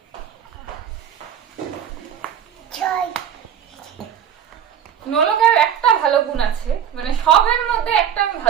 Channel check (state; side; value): quieter; left; 9.1 dB